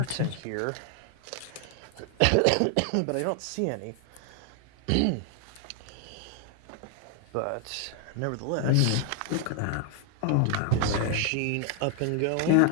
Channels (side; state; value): both; different; correlation 0.00